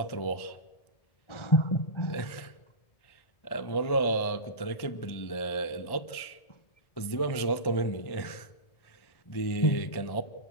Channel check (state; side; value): late; right; 1.1 ms